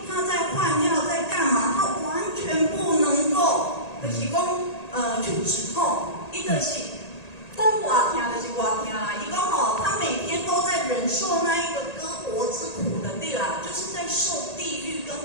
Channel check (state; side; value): late; right; 1.8 ms